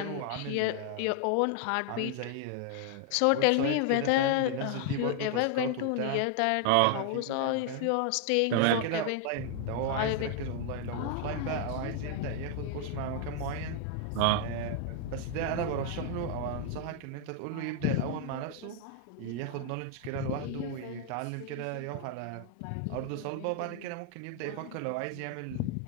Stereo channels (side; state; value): both; different; correlation 0.00